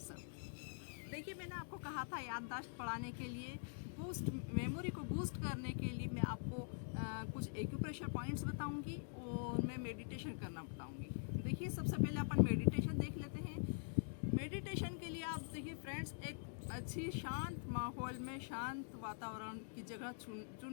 देखिए, मैंने आपको कहा था याददाश्त बढ़ाने के लिए, बूस्ट मेमोरी को बूस्ट करने के लिए मैं आपको कुछ एक्यूप्रेशर पॉइंट्स बताऊंगी और मैं मेडिटेशन करना बताऊंगी। देखिए, सबसे पहले अपन मेडिटेशन देख लेते हैं। मेडिटेशन के लिए आप देखिए फ्रेंड्स, एक अच्छी शांत माहौल में शांत वातावरण की जगह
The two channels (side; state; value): right; silent; digital silence